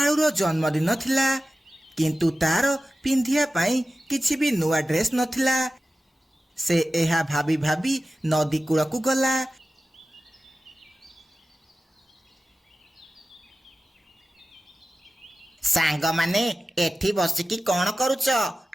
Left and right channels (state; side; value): normal; both; correlation 0.95